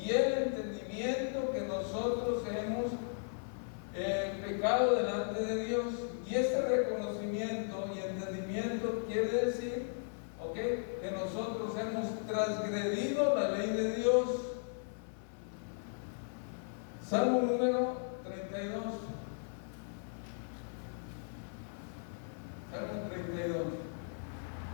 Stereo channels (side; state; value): right; silent; digital silence